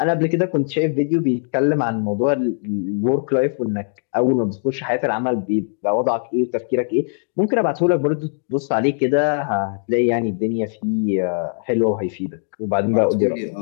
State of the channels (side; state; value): right; silent; digital silence